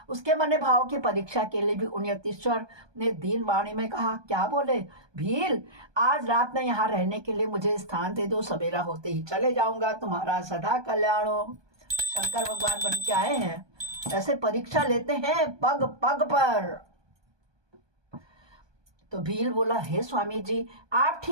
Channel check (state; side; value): late; left; 1.2 ms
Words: उसके मन भाव की परीक्षा के लिए भी उन यतीश्वर ने दीन वाणी में कहा, क्या बोले भील, आज रात में यहाँ रहने के लिए मुझे स्थान दे दो, सवेरा होते ही चले जाऊंगा, तुम्हारा सदा कल्याण हो। शंकर भगवान बन के आए हैं, ऐसे परीक्षा लेते हैं पग पग पर। तो भील बोला, हे स्वामी जी, आप